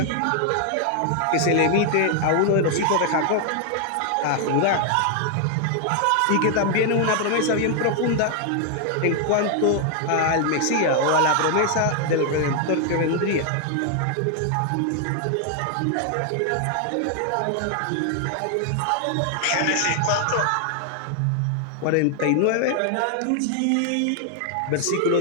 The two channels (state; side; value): different; both; correlation 0.00